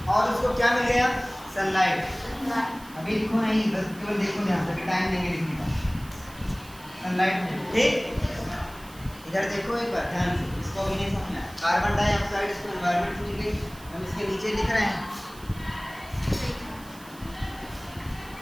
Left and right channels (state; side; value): noise; right; hiss, 21 dB below the sound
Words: और उसको क्या मिल गया, सनलाइट। अभी लिखो नहीं, बस केवल देखो ध्यान से, टाइम देंगे लिखने का। सनलाइट में, ठीक, इधर देखो एक बार ध्यान से, इसको भी नहीं समझना। कार्बन डाइऑक्साइड इसको एनवायरनमेंट से मिल गई, हम इसके नीचे लिख रहे हैं।